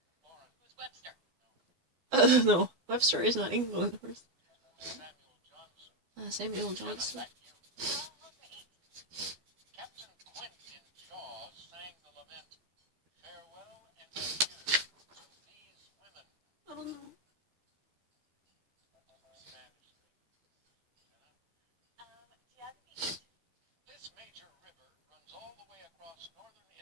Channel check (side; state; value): left; late; 12 ms